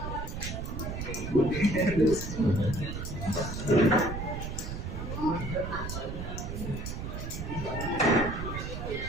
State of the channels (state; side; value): noise; right; rumble, 5 dB below the sound